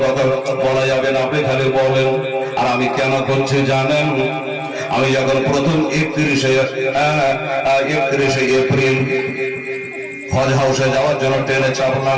কথা বলা যাবে না, আপনি খালি বলেন। আর আমি কেন করছি জানেন? আমি যখন প্রথম 31শে এপ্রিল হজ হাউসে যাওয়ার জন্য ট্রেনে চাপলাম।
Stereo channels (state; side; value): identical; both; correlation 1.00